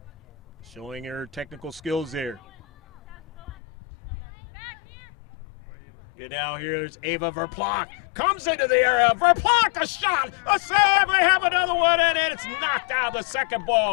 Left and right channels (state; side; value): drops out; right; at 3.5 s